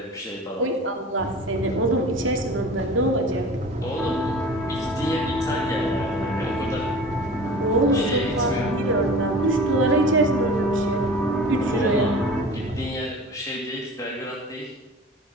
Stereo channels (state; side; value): normal; both; correlation 0.39